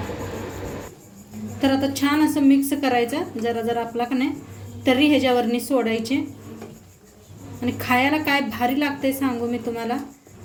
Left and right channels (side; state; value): both; identical; correlation 1.00